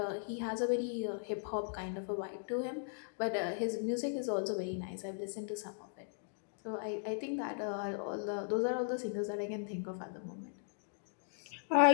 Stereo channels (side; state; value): right; silent; digital silence